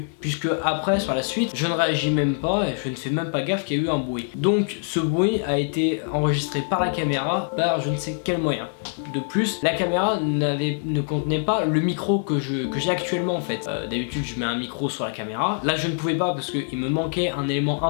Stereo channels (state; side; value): silent; right; 60 dB below the other